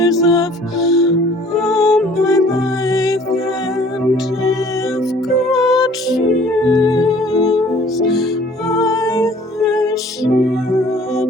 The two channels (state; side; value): normal; both; correlation 0.53